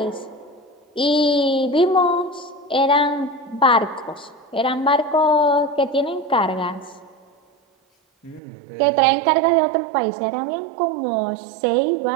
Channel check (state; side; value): drops out; left; at 8.4 s